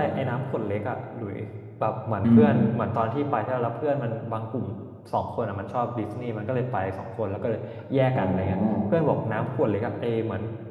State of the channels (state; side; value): identical; both; correlation 1.00